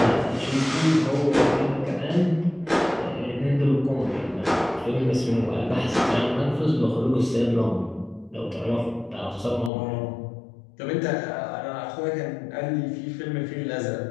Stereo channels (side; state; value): right; drops out; at 9.7 s